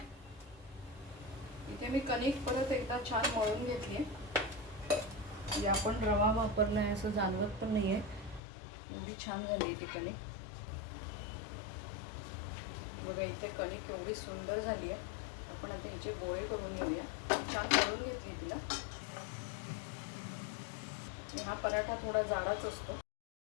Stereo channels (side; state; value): right; drops out; at 8.4 s